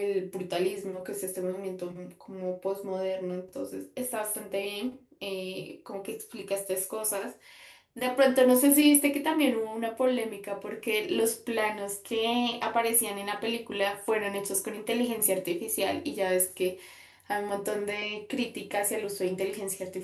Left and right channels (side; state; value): both; identical; correlation 1.00